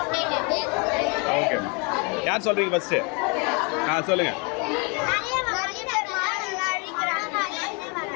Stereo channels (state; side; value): quieter; right; 33.1 dB